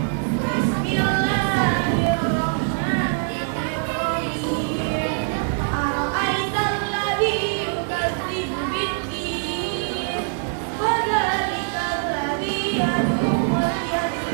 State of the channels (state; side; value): silent; left; 63 dB below the other